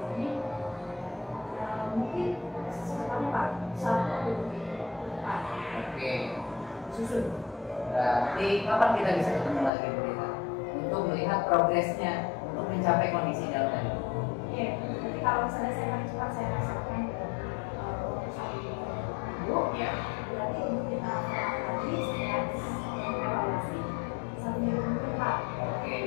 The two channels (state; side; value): drops out; right; at 9.7 s